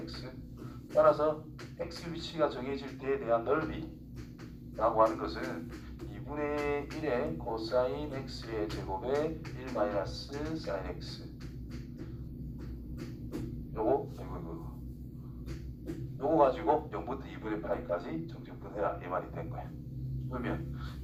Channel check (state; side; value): identical; both; correlation 1.00